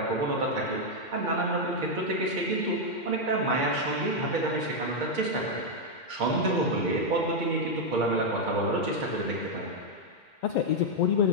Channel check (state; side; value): late; right; 2.2 ms